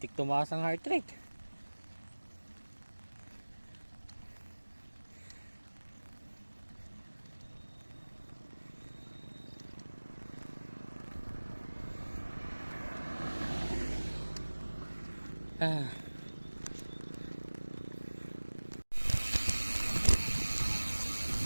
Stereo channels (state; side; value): inverted; both; correlation -1.00